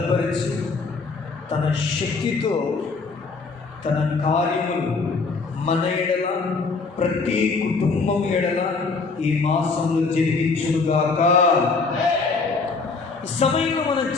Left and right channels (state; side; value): quieter; right; 4.3 dB